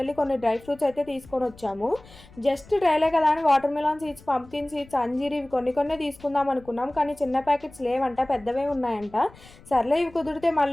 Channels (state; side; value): noise; left; rumble, 23 dB below the sound